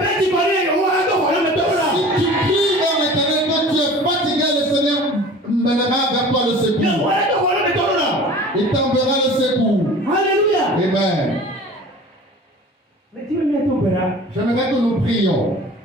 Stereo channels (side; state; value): both; normal; correlation 0.42